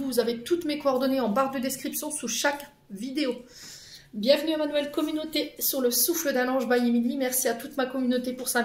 vous avez toutes mes coordonnées en barre de description sous chaque vidéo. Bienvenue à ma nouvelle communauté sur le souffle d'un ange by Emily. Merci à toute ma communauté pour sa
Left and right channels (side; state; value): both; identical; correlation 1.00